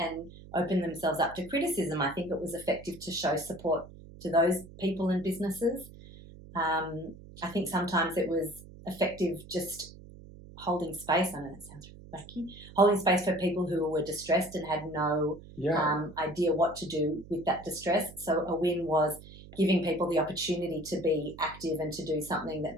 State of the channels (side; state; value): right; noise; hum, 18 dB below the sound